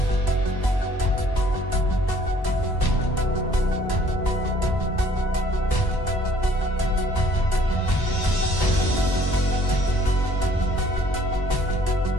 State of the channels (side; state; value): right; late; 1.1 ms